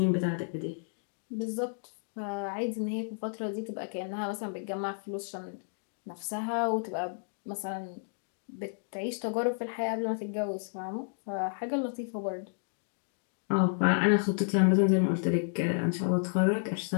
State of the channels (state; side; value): silent; right; digital silence